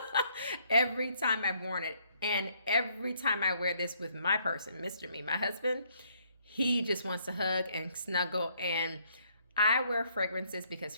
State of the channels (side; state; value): both; inverted; correlation -0.68